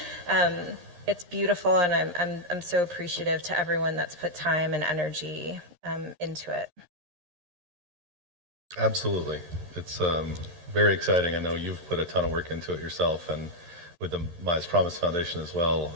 It's beautiful, and I'm so appreciative to everyone that's put time and energy into it. Absolutely. It's very exciting. I know you've put a ton of work into it yourself and with the Mize Promise Foundation as well.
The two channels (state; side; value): late; left; 13 ms